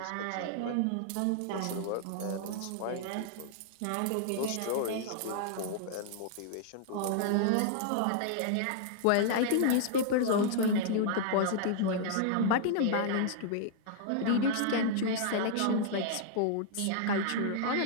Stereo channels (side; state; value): both; different; correlation -0.01